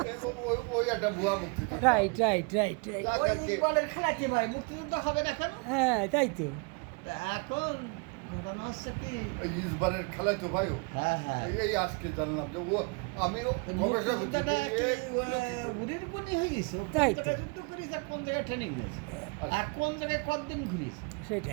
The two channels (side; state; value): left; quieter; 31.8 dB